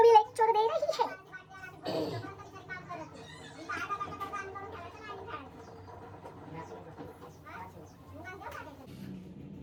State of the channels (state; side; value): identical; both; correlation 1.00